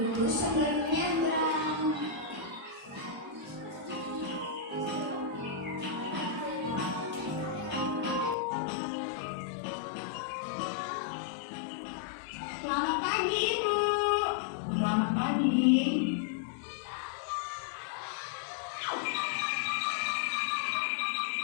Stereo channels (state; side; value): drops out; right; at 8.3 s